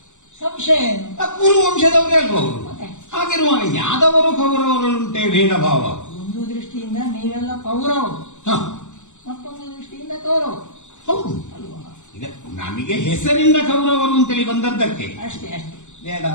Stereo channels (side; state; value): right; late; 0.84 ms